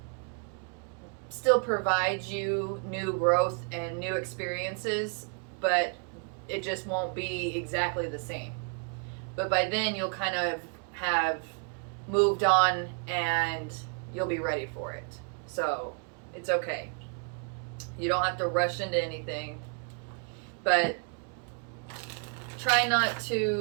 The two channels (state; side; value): quieter; left; 39.4 dB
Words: still provide you new growth and new experiences, but it just won't be exactly the same. But by then, you'll kind of have moved on and you'll be ready for it. So it's okay. You don't have to rush into anything, but try not